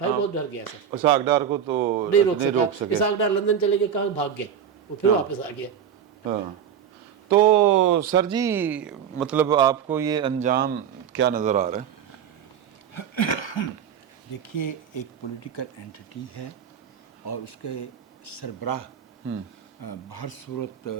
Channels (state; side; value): quieter; left; 8.4 dB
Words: بہت ڈر گیا سر. اسحاق ڈار کو تو نہیں روک سکا. اسحاق ڈار لندن چلے گئے, کہاں بھاگ گئے, وہ پھر واپس آ گیا. تو سر جی مطلب آپ کو یہ انجام کیا نظر آ رہا ہے؟ دیکھیے ایک پولیٹیکل اینٹی ہے اور اس کے سربراہ بہر صورت